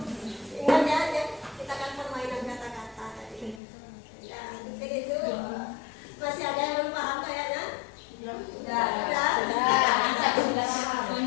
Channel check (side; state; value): right; drops out; at 3.6 s